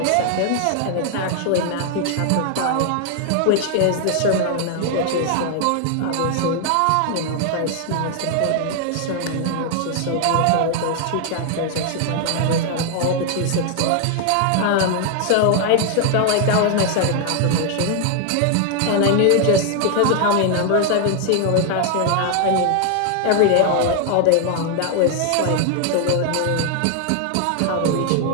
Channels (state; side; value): different; both; correlation 0.00